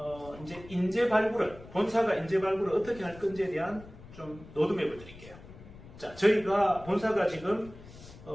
이제 인재 발굴을, 본사가 인재 발굴을 어떻게 할 건지에 대한 좀 로드맵을 드릴게요. 자, 저희가 본사가 지금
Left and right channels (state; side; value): noise; left; rumble, 18 dB below the sound